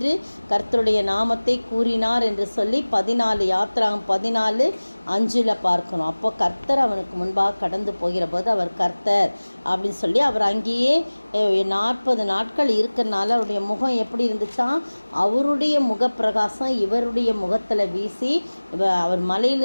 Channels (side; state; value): both; inverted; correlation -1.00